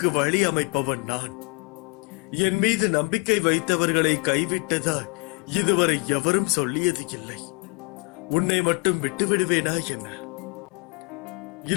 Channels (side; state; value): right; quieter; 31.0 dB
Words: வழி அமைப்பவன் நான். என் மீது நம்பிக்கை வைத்தவர்களை கைவிட்டதால் இதுவரை எவரும் சொல்லியது இல்லை. உன்னை மட்டும் விட்டுவிடுவேனா என்ன?